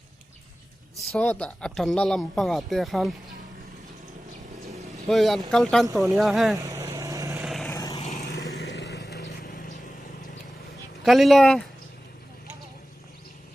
so ta atan na lam panga te khan hoi an kal tan to nia he kalila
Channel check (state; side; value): normal; both; correlation 0.96